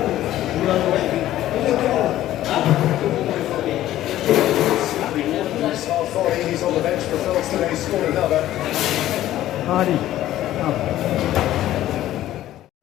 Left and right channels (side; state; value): right; quieter; 13.7 dB